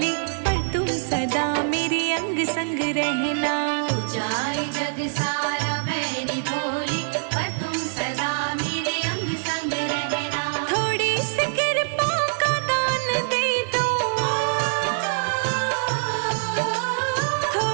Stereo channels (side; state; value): left; silent; digital silence